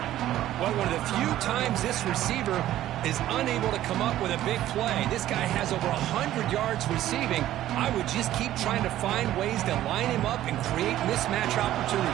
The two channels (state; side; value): quieter; left; 13.4 dB